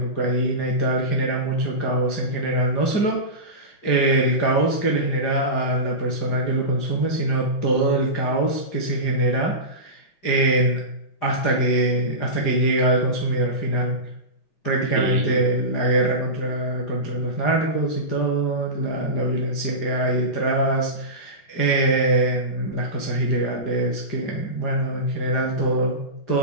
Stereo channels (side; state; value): right; late; 5.0 ms